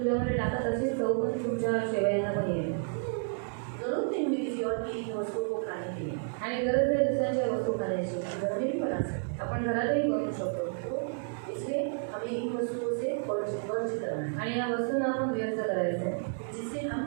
टाका, तशीच चव पण तुमच्या शेवयांना पण येईल. जरूरत नहीं हुई किसी और की वस्तुओं को खाने के लिए, आणि गरज आहे दुसऱ्यांच्या वस्तू खाण्याची, घर में भी बना सकते हैं। आपण घरातही बनवू शकतो. तो इसलिए हमें इन वस्तुओं से वर्ज करना है, आणि या वस्तूंना आपण व्यर्थ करायचं आहे, जिससे हम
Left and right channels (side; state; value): left; silent; 57 dB below the other